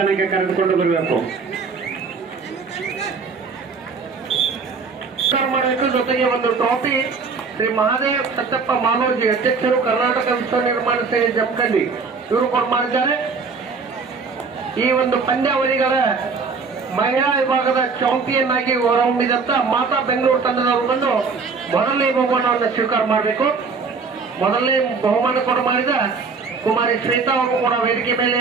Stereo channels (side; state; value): left; quieter; 4.8 dB